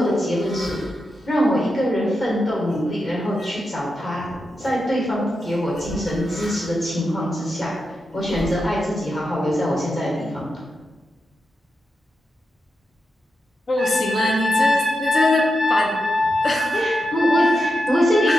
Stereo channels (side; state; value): both; normal; correlation 0.88